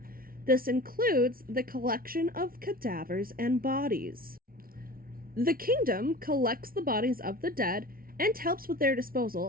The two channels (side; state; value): left; late; 0.43 ms